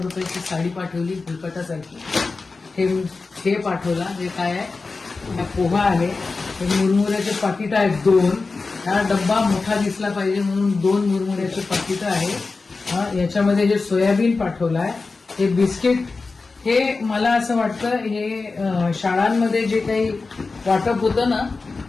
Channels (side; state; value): right; quieter; 4.0 dB